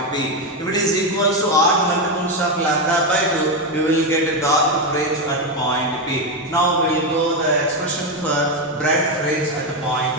P. If it is equals to odd multiples of lambda by 2, we will get a dark fringe at point P. Now we will go the expression for bright fringe at point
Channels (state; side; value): normal; both; correlation 0.09